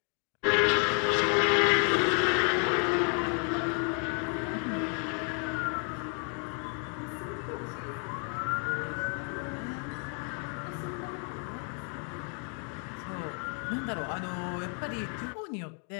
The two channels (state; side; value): quieter; right; 38.3 dB